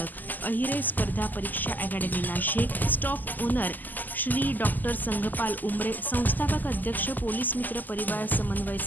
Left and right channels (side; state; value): right; late; 0.085 ms